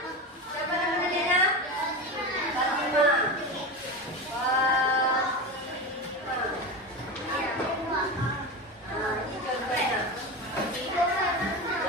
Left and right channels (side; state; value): both; normal; correlation 0.23